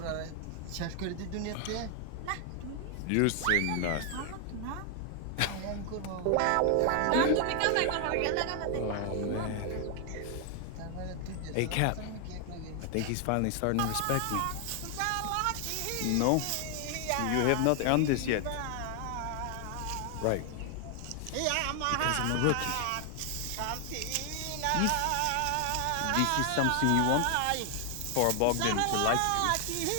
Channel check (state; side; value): different; both; correlation 0.00